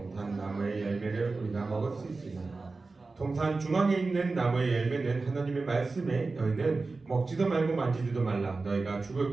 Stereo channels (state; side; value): quieter; left; 3.8 dB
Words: 나무의 열매를 우리가 먹을 수 있으나 동산 중앙에 있는 나무의 열매는 하나님의 말씀에 너희는 먹지도 말고 만지지도 말라 너희가